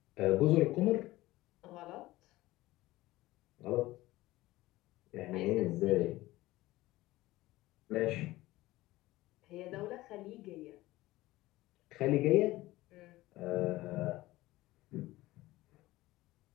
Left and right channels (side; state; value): right; quieter; 18.0 dB